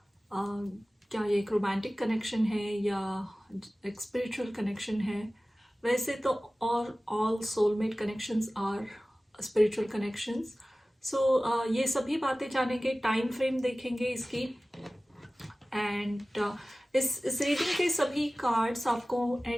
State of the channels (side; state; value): both; normal; correlation 0.97